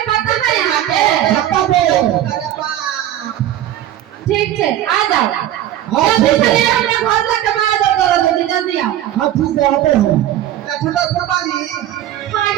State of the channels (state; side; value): quieter; left; 12.3 dB